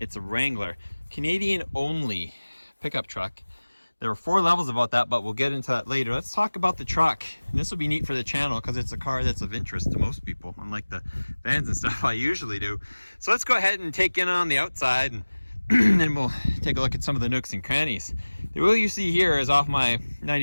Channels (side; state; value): both; inverted; correlation -1.00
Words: It's a Wrangler. Canadian only pickup truck. There are 4 levels about that, but we'll get into that later. Let's talk about the truck. And this will be neat for the channel because it's a car that's of interest to most people, unlike the vans and stuff I usually do. So let's go ahead and take in on the outside, and then we'll take a look at some of the nooks and crannies. The wheel you see here is off my